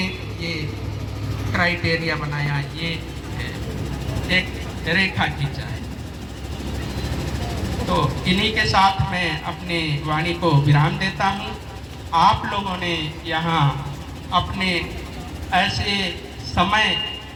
ये क्राइटेरिया बनाया, ये एक रेखा खींचा है। तो इन्हीं के साथ मैं अपने वाणी को विराम देता हूँ। आप लोगों ने यहाँ अपने ऐसे समय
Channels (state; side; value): identical; both; correlation 1.00